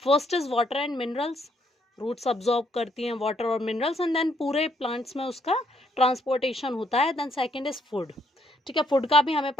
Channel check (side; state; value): both; normal; correlation 0.72